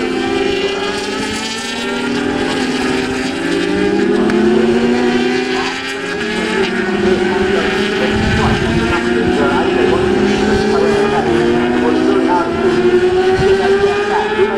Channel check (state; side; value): identical; both; correlation 1.00